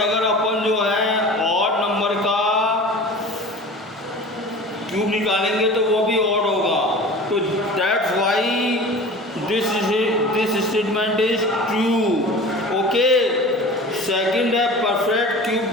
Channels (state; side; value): normal; both; correlation 0.38